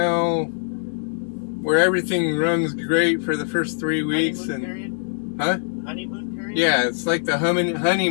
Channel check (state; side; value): silent; right; digital silence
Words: where everything runs great for the first 3 weeks. Honeymoon and period? Huh? Honeymoon period? Yeah, it's like the